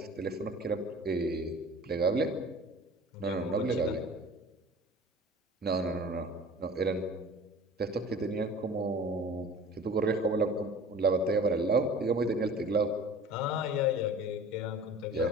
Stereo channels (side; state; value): both; normal; correlation 0.43